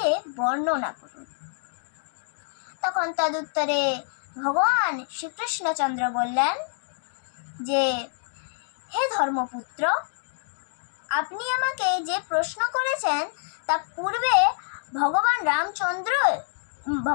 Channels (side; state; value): right; silent; 61 dB below the other